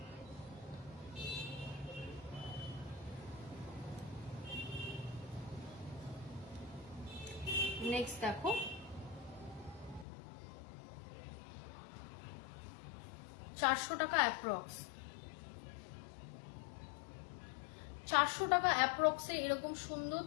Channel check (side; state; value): right; drops out; at 10.1 s